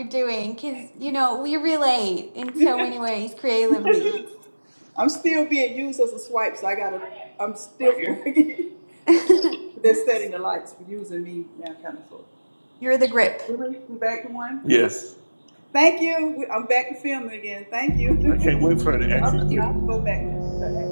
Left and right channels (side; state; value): both; inverted; correlation -1.00